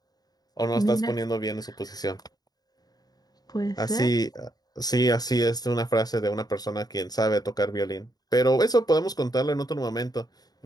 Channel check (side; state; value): right; late; 0.19 ms